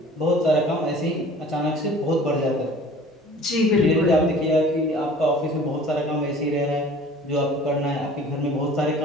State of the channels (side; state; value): both; normal; correlation 0.47